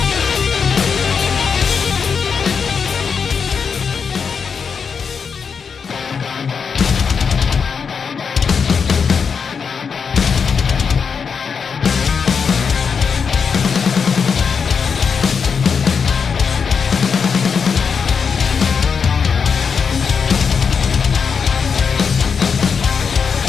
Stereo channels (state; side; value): quieter; right; 6.1 dB